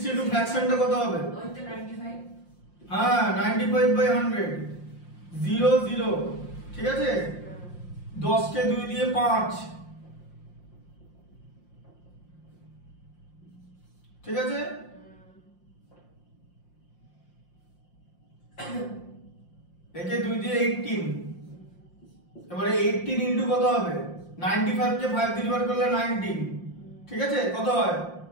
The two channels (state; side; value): late; right; 5.7 ms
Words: ফ্র্যাকশনটা কত হবে? ওই তো 95। হ্যাঁ 95 বাই 100, 0 0, ঠিক আছে। 10 কে 2 দিয়ে 5, ঠিক আছে। একে 2 দিয়ে 18, এবারে 18 ইনটু কত হবে? 95 কে 5 দিয়ে ডিভাইড করলে 19, ঠিক আছে। কত হয়?